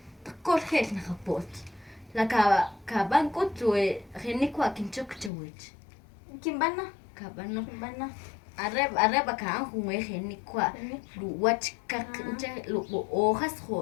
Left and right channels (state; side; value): drops out; right; at 5.3 s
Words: Takkor khel na kapot. La ka bankut we khinikwa kinchok chawich. Kimbana? Kabano. Kimbana. Areba ka an hun we khinikwa. Lu wach ka nche lu o